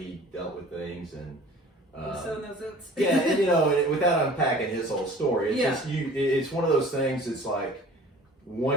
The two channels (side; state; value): both; normal; correlation 0.46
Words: dealt with things, and so those oats. yeah, and, without unpacking his whole story, it's one of those things. It's like